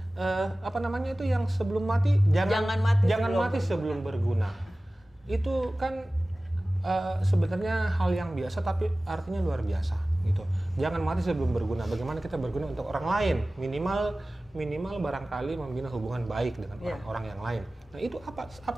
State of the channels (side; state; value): both; normal; correlation 0.97